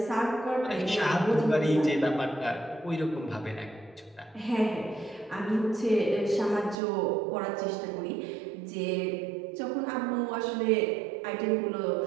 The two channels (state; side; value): drops out; left; at 6.8 s